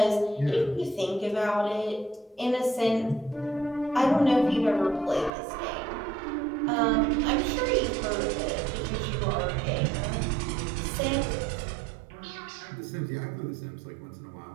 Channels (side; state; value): left; drops out; at 5.3 s